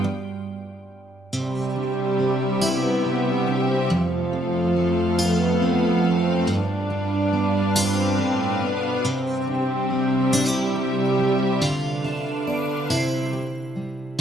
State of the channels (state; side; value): normal; both; correlation 0.73